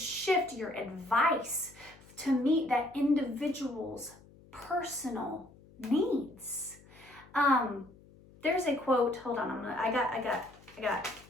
your advice to meet that individual's personal needs. There's a quote, hold on, I got,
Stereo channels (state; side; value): noise; left; hum, 24 dB below the sound